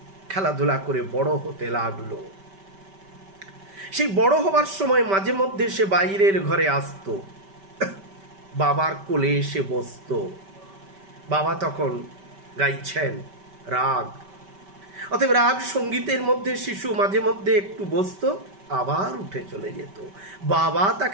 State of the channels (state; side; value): late; left; 5.1 ms